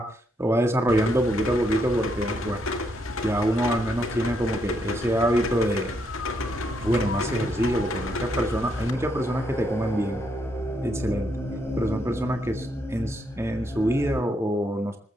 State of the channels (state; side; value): normal; both; correlation 0.76